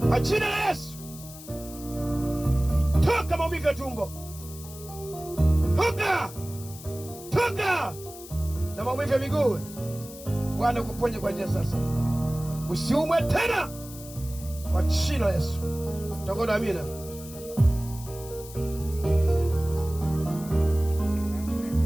Kwa jina la Yesu. Toka maumivu ya tumbo. Toka. toka na maumivu ya miguu. Bwana kuponye kwa njia sasa, usiumwe tena kwa jina la Yesu. Tangoda amina.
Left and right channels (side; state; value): left; noise; hiss, 16 dB below the sound